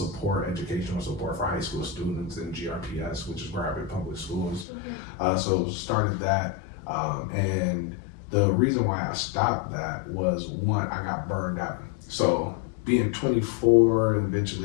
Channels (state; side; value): drops out; right; at 4.7 s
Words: educational support for high school students in GRPS, which is private public schools. Okay. So started that, and the reason why I stopped that was, one, I got burned out. So being 24 and